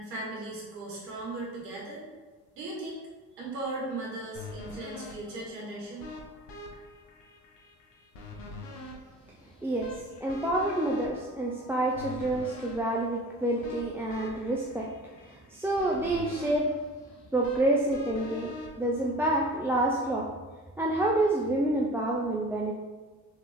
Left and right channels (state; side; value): normal; both; correlation 0.41